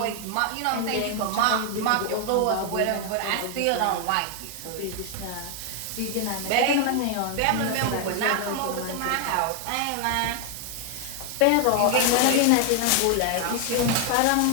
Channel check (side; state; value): both; different; correlation 0.00